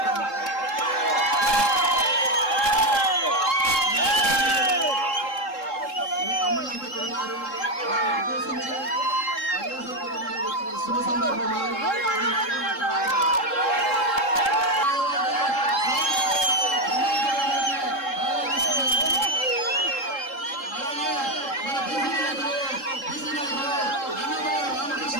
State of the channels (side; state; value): right; late; 3.7 ms